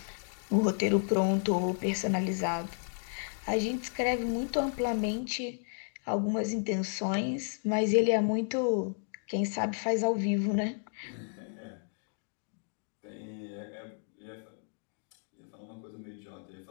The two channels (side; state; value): right; silent; 56 dB below the other